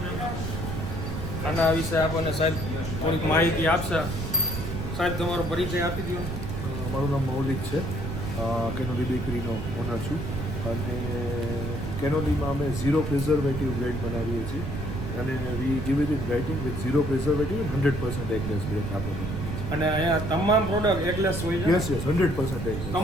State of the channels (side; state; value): right; noise; rumble, 4 dB below the sound